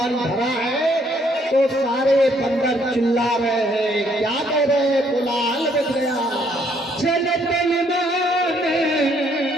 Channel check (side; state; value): both; normal; correlation 0.67